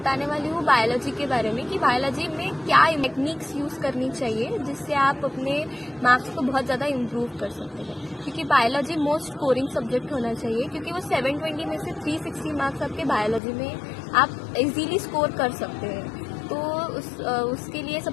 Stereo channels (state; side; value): drops out; right; at 13.4 s